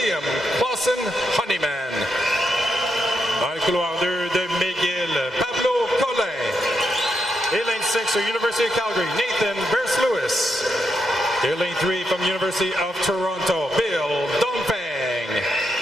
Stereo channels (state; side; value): normal; both; correlation 0.82